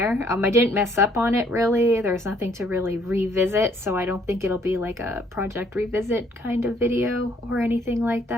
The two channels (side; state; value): both; normal; correlation 0.64